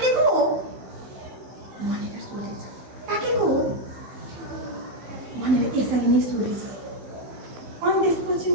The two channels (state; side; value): late; left; 15 ms